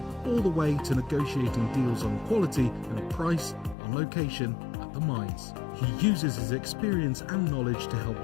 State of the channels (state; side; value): drops out; right; at 3.8 s